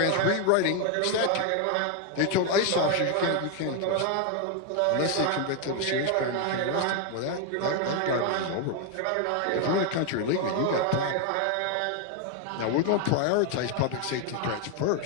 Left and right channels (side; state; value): both; different; correlation 0.01